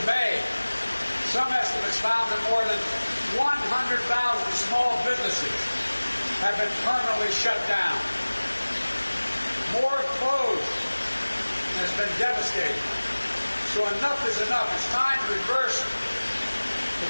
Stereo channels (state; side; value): inverted; both; correlation -1.00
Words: May, some estimates found that more than 100,000 small businesses have been permanently shut down. More closed, and it's been devastating. So enough is enough. It's time to reverse the